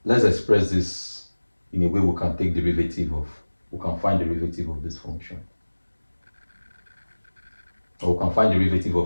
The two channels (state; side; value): inverted; both; correlation -1.00